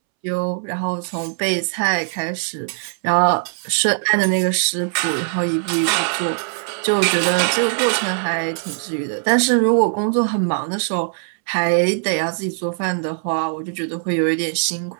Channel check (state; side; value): silent; left; 65 dB below the other